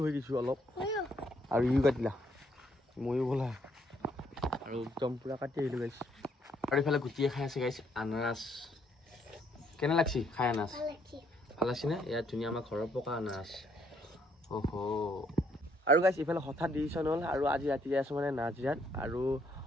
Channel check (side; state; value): both; normal; correlation 0.69